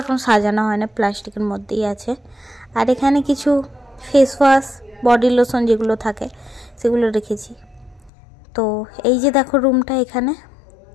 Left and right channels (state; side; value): drops out; right; at 8.1 s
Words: এখন সাজানো হয় না, প্লাস্টিকের মধ্যেই আছে। আর এখানে কিছু ফেস ওয়াশ, বডি লোশন যেগুলো থাকে সেগুলো রেখেছি। তো এই যে দেখো রুমটা এখানে,